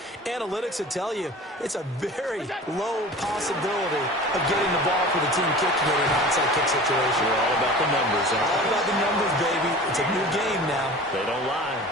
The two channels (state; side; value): normal; both; correlation 0.39